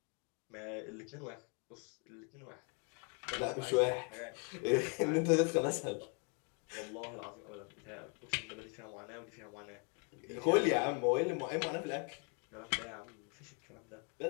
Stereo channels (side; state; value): right; quieter; 36.5 dB